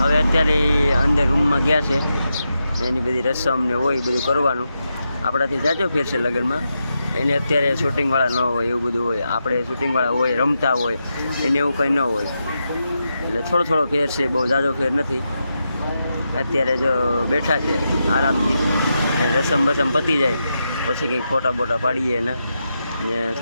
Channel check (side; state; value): both; inverted; correlation -0.86